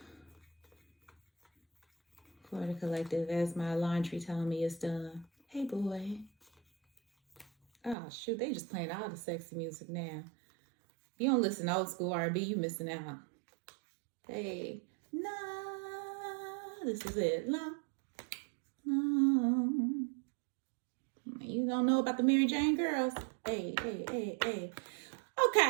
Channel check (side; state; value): left; drops out; at 8.0 s